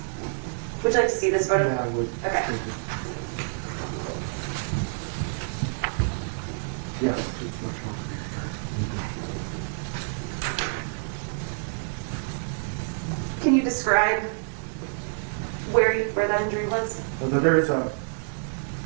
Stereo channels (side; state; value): left; silent; digital silence